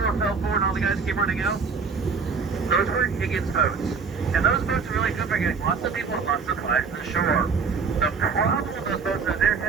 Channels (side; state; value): left; quieter; 5.3 dB